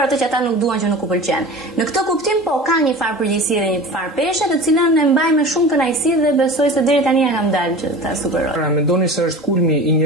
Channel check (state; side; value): normal; both; correlation 0.37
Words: atë që ata nuk duan, që nuk u pëlqen. Në këtë kuptim po ka një farë përgjegjësie dhe një farë peshe, të cilën e mbaj me shumë kënaqësi dhe besoj se deri tani e kam dalë që ta superoj. Pra mendoni se është kulmi i